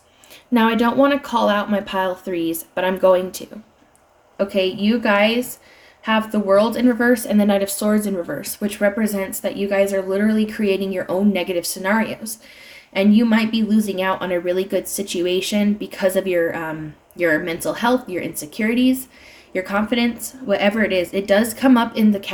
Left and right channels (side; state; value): both; identical; correlation 1.00